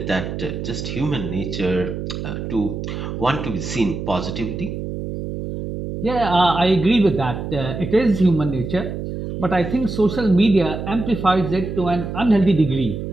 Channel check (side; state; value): right; noise; hum, 6 dB below the sound